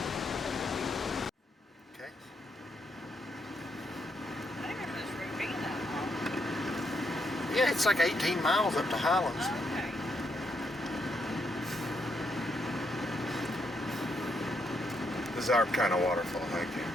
Okay. Yeah, it's like 18 miles up to Highlands. Okay. This is our kind of waterfall. Thank you.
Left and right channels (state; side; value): normal; both; correlation 0.77